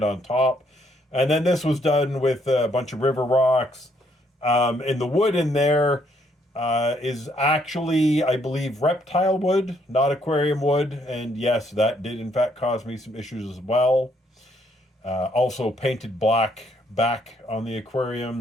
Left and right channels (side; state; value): both; normal; correlation 0.70